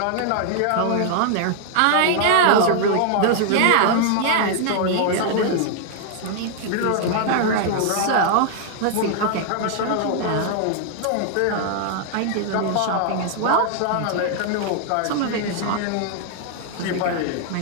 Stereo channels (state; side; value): different; both; correlation -0.01